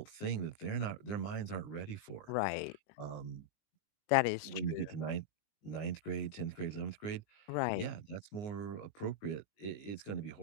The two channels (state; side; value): late; right; 19 ms